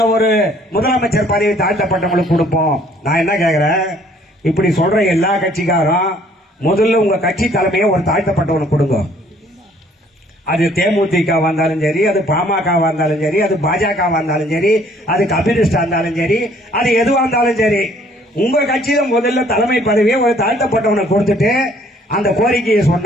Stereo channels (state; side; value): normal; both; correlation 0.60